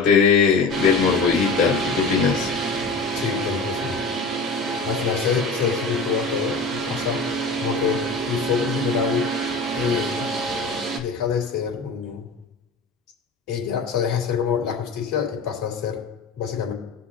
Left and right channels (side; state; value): right; quieter; 3.5 dB